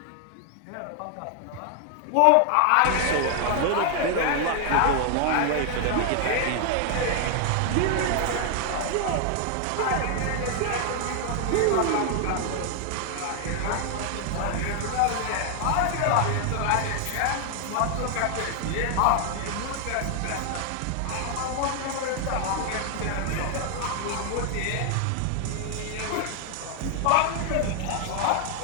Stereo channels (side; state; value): both; different; correlation 0.00